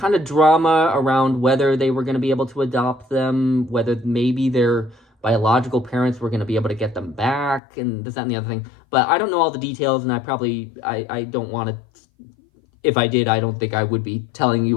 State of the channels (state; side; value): drops out; right; at 7.6 s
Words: of drama around whether they were going to be able to adopt them, whether maybe their biological parents were going to be able to get them back, and this, that, and the other thing. But I don't know all the details, and I don't want to, if I did, I don't think I would be telling